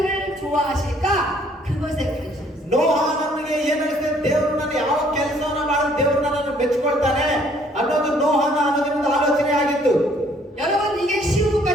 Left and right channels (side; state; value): both; normal; correlation 0.62